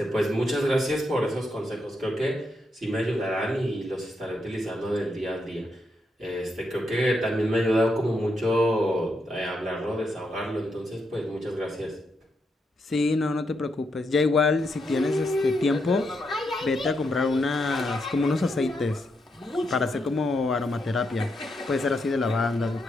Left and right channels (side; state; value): both; normal; correlation 0.81